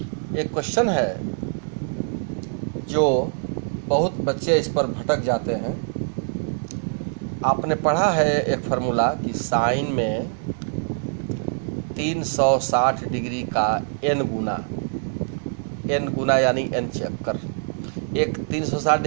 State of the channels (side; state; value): left; silent; 63 dB below the other